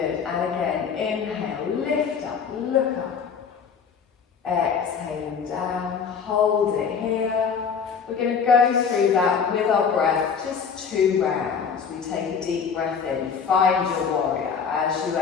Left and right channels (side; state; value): right; quieter; 6.4 dB